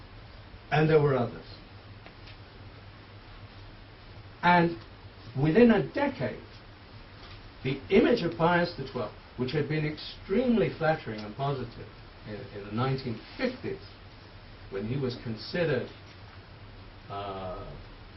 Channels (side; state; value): both; identical; correlation 1.00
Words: And there were others. And within a decade, the image of Pius XII, which had been extremely flattering and positive in the 1950s, when he was considered,